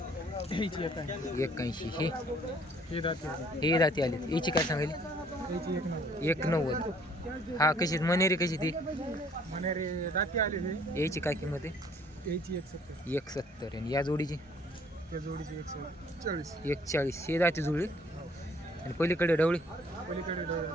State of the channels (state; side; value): normal; both; correlation 0.59